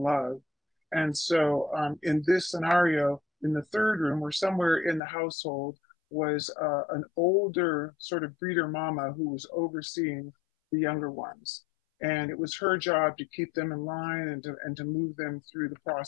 love. And so in this scenario, in the third room, or somewhere in the household, was an older sort of breeder mama who was overseeing the younger ones. And it was her job to keep them in line, and to move them through the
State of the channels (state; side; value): drops out; right; at 5.0 s